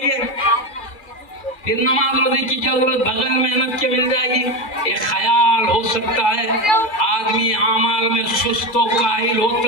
گے۔ پھر نماز روزے کی کیا ضرورت، بغیر محنت کے مل جائے گی۔ ایک خیال ہو سکتا ہے، آدمی اعمال میں سست و کاہل ہو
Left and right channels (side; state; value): right; late; 2.4 ms